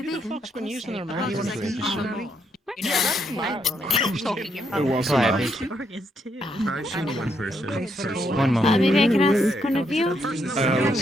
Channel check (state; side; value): normal; both; correlation 0.76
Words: Fuck's been using them, man. You want to see It was Hi, enough. I see one person. One moment. Maybe I can ask one of you?